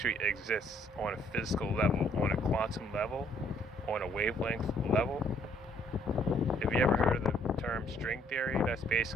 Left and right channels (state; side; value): normal; both; correlation 0.65